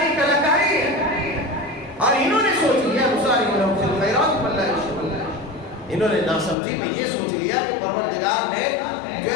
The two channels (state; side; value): drops out; right; at 6.6 s